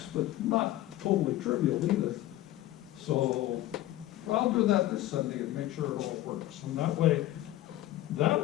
but not totally trivial either. So I'll do that this Sunday and make sure it all works. And that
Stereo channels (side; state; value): right; quieter; 14.9 dB